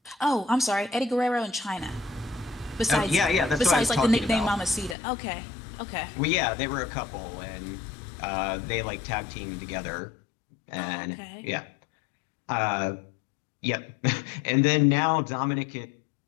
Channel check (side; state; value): right; drops out; at 5.0 s